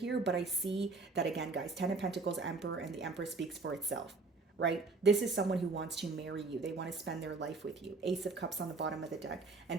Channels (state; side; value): quieter; left; 3.8 dB